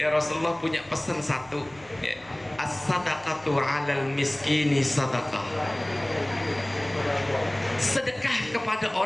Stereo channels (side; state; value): right; noise; hum, 27 dB below the sound